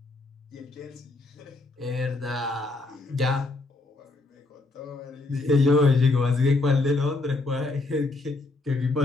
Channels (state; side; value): quieter; right; 3.1 dB